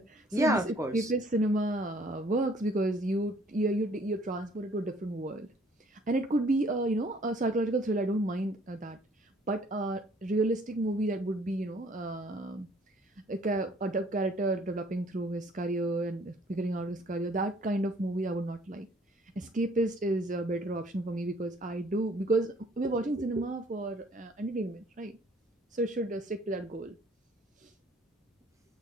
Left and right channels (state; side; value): normal; both; correlation 0.59